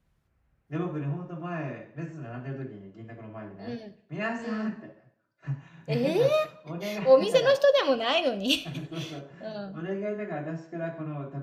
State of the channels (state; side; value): identical; both; correlation 1.00